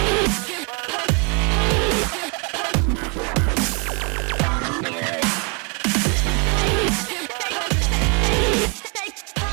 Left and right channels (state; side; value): quieter; left; 34.9 dB